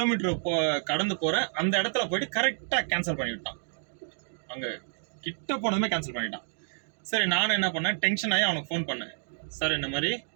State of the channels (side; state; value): left; silent; digital silence